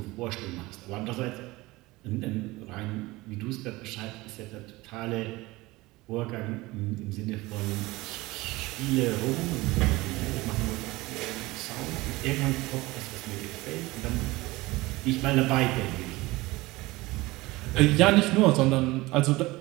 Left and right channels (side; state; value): left; quieter; 20.6 dB